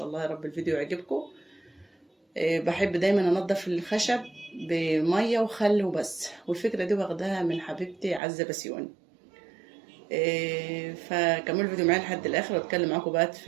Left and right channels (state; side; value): drops out; left; at 8.2 s